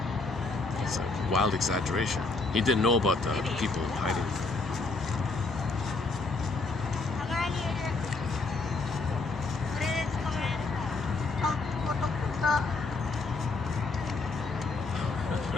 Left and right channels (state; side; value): quieter; right; 3.8 dB